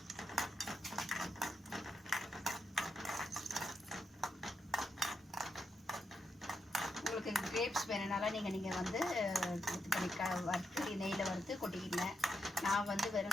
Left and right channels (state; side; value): normal; both; correlation 0.82